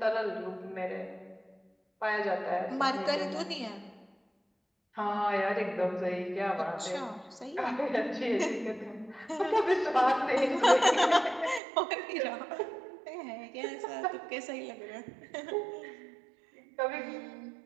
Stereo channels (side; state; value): left; drops out; at 11.6 s